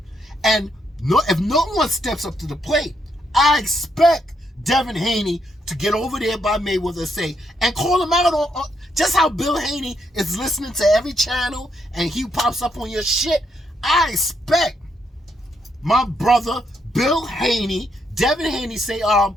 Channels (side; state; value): both; normal; correlation 0.77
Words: And if no one steps up to the plate, I expect Devin Haney to get over there by Mayweather and say, and call him out on just how Bill Haney is listening to every channel and he pops up on your shit. I expect my brother Bill Haney, Devin Haney, say,